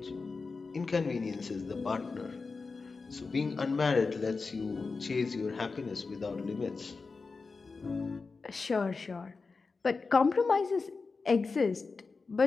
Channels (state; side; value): quieter; right; 4.3 dB